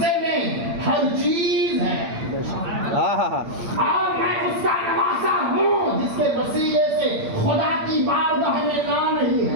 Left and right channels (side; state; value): left; late; 8.8 ms